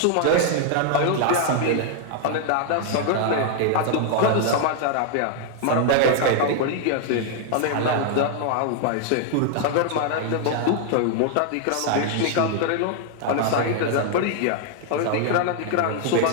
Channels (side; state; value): both; different; correlation 0.00